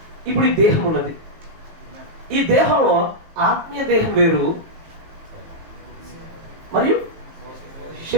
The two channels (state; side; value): late; left; 18 ms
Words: ఇప్పుడు ఈ దేహం ఉన్నది. ఈ దేహంలో ఆత్మీయ దేహం వేరు మరియు